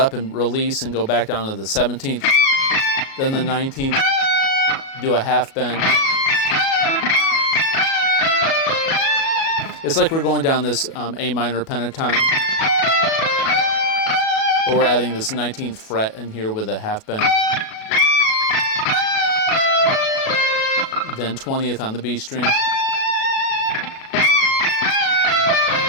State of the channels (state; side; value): late; right; 37 ms